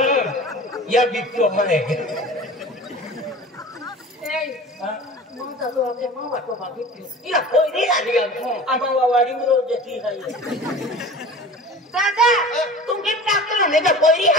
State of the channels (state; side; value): normal; both; correlation 0.38